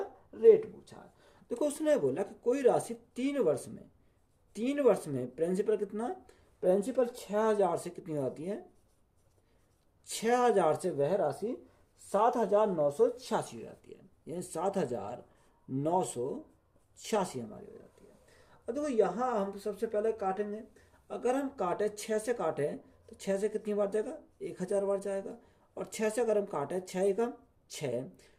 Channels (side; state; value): both; identical; correlation 1.00